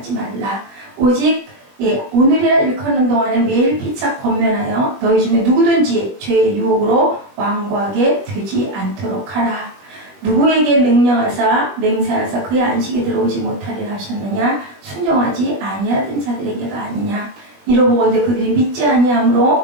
말라. 오직 오늘이라 일컫는 동안에 매일 피차 권면하여 너희 중에 누구든지 죄의 유혹으로 완고하게 되지 않도록 하라. 누구에게 명령하사 맹세하사 그의 안식에 들어오지 못하리라 하셨느냐? 순종하지 아니하던 자들에게가 아니냐? 이러보건대 그들이 믿지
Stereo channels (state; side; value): late; left; 20 ms